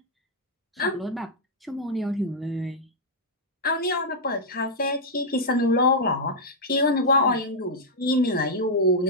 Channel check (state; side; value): normal; both; correlation -0.06